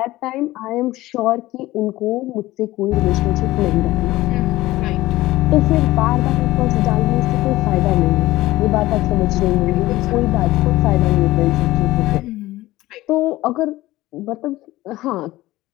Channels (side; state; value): right; quieter; 17.4 dB